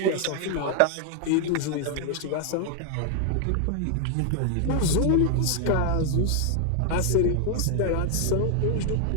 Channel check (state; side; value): different; both; correlation 0.00